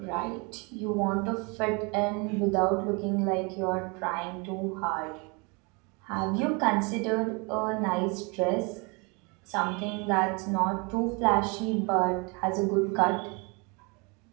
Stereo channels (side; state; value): left; quieter; 30.5 dB